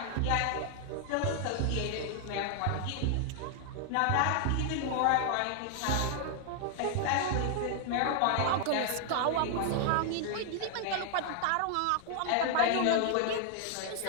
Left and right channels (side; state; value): both; different; correlation 0.00